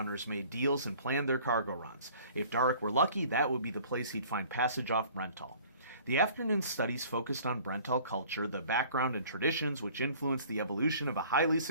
made deals and planned their cargo runs. If Dark were lucky, that would be the place he'd find passage off Brental. The afternoon studies focused on Brental culture, the background and traditions which influenced the evolution of a highly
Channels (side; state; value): both; inverted; correlation -0.51